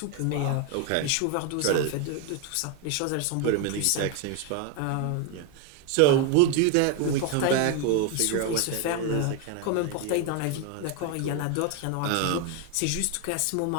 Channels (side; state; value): both; different; correlation 0.01